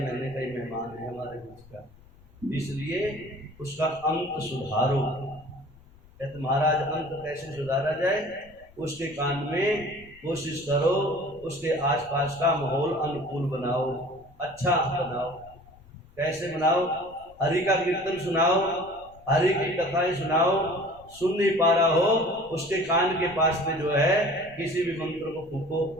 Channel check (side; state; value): left; noise; rumble, 25 dB below the sound